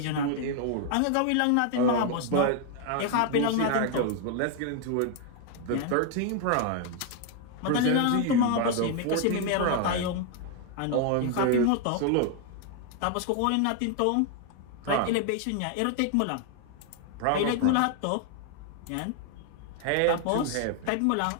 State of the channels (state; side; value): different; both; correlation 0.00